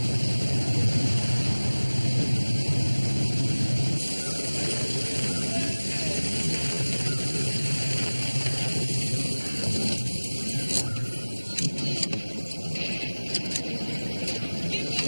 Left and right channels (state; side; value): inverted; both; correlation -1.00